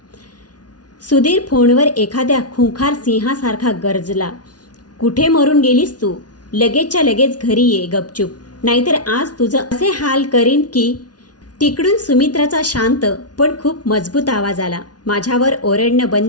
सुधीर फोनवर एखाद्या खुंखार सिंहासारखा गरजला. कुठे मरून गेलीस तू? लगेचच्या लगेच घरी ये गपचूप, नाहीतर आज तुझं असे हाल करीन की. तिकडून सुमित्राचा शांत पण खूप मजबूत आवाज आला. माझ्यावर ओरडणं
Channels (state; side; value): late; right; 0.69 ms